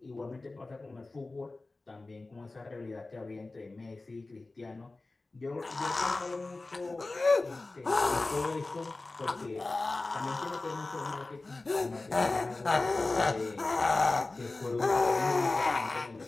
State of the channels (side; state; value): right; quieter; 3.3 dB